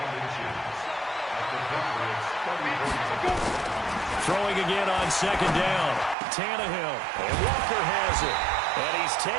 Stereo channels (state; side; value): drops out; left; at 6.2 s